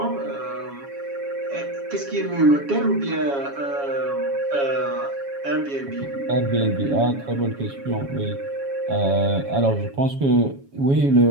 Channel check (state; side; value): late; left; 7.2 ms